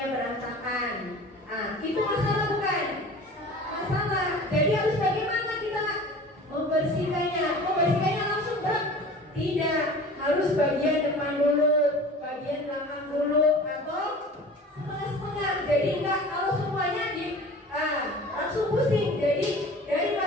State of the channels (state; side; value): normal; both; correlation 0.41